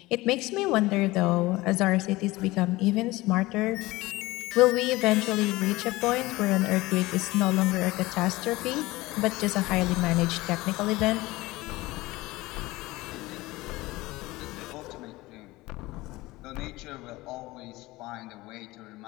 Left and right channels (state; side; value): quieter; right; 19.9 dB